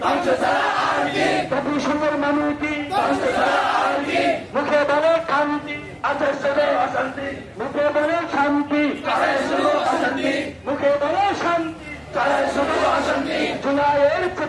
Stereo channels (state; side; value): identical; both; correlation 1.00